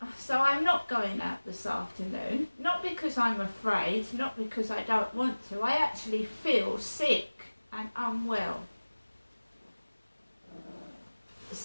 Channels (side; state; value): both; inverted; correlation -1.00